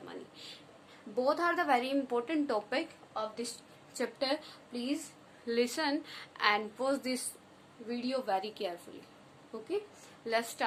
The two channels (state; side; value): identical; both; correlation 1.00